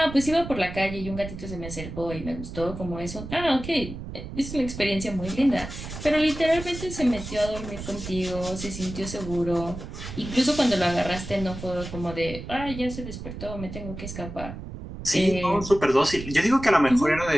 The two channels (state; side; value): noise; right; rumble, 10 dB below the sound